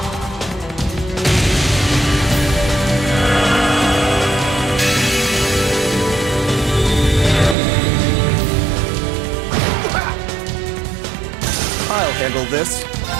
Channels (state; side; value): drops out; left; at 7.6 s